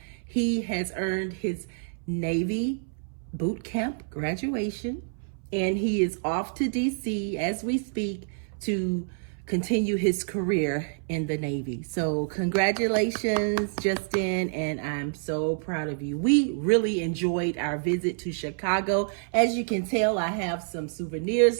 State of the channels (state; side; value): silent; left; 60 dB below the other